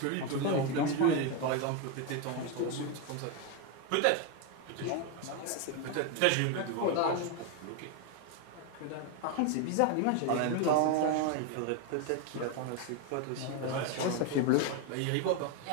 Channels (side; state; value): both; different; correlation 0.02